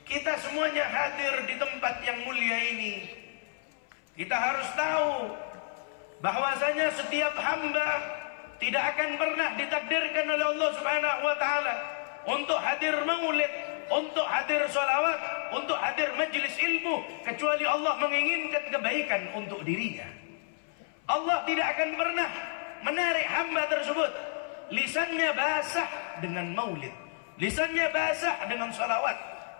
Kita semuanya hadir di tempat yang mulia ini. Kita harus tahu bahwasanya setiap hamba tidak akan pernah ditakdirkan oleh Allah Subhanahu wa taala untuk hadir maulid, untuk hadir sholawat, untuk hadir majlis ilmu, kecuali Allah menginginkan kebaikan untuk dirinya. Allah tidak akan pernah menarik hamba tersebut. Lisannya basah dengan maulid, lisannya basah dengan sholawat,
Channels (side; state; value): right; silent; 58 dB below the other